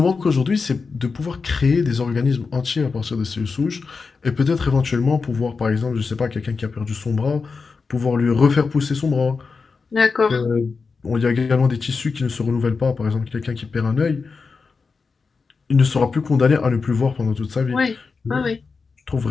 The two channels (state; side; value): quieter; right; 4.7 dB